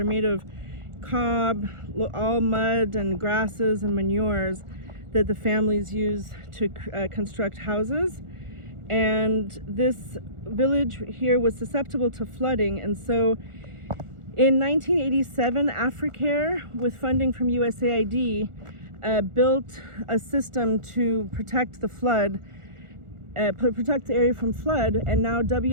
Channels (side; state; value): left; late; 1.4 ms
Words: made of cob, all mud and grasses and manures that the families use to construct houses. And this village here was susceptible to flooding. And so in 1987, Africare, with funding from USAID, built a system to protect the flood, protect the area from flood, and now